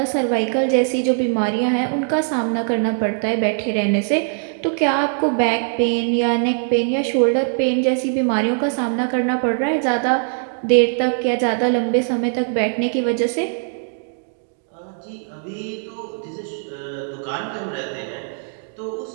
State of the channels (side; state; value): left; silent; 64 dB below the other